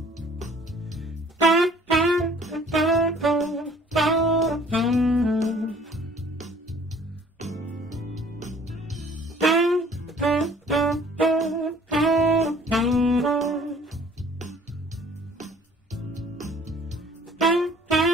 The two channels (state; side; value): normal; both; correlation 0.54